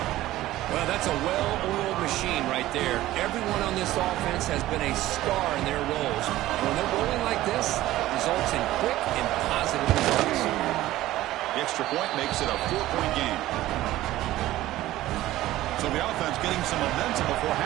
Well, that's a well-oiled machine right there. Everyone on this offense has been a star in their roles. And when they're rolling like this, it results in quick and positive results. The extra point makes it a 4-point game. So the offense getting some momentum before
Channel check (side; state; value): left; quieter; 15.6 dB